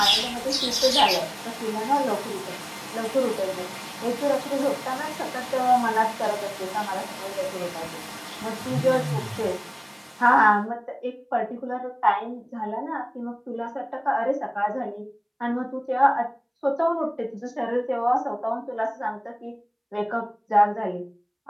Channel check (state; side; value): identical; both; correlation 1.00